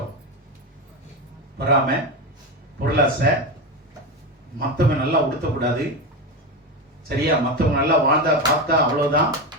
பொறாமை, பொருளாசை, மத்தவங்க நல்லா உடுத்தக்கூடாது, சரியா? மத்தவங்க நல்லா வாழ்ந்தா பார்த்தா அவ்வளவுதான்.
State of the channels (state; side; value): normal; both; correlation 0.16